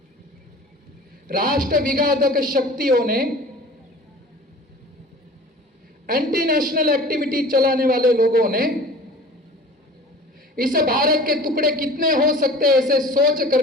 राष्ट्र विघातक शक्तियों ने, एंटी नेशनल एक्टिविटी चलाने वाले लोगों ने, इस भारत के टुकड़े कितने हो सकते हैं ऐसे सोच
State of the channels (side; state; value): both; normal; correlation 0.41